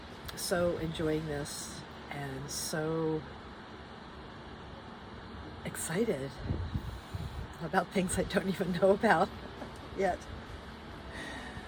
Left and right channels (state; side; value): identical; both; correlation 1.00